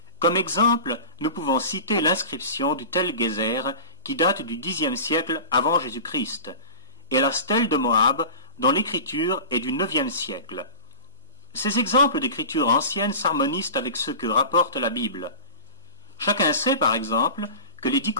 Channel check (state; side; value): inverted; both; correlation -0.33